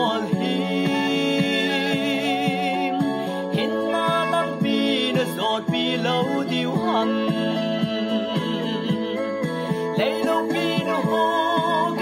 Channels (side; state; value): both; identical; correlation 1.00